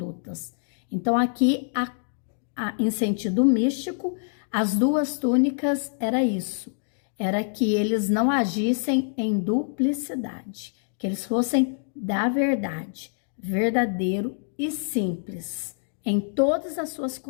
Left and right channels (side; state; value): right; silent; digital silence